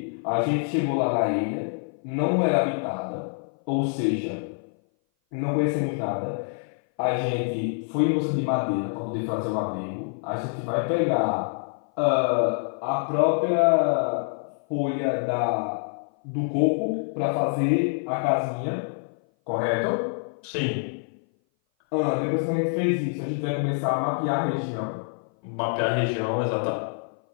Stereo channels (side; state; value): right; silent; 58 dB below the other